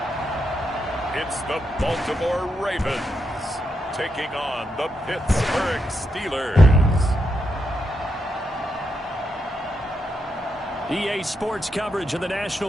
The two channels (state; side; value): normal; both; correlation 0.82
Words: It's the Baltimore Ravens taking on the Pittsburgh Steelers. EA Sports coverage of the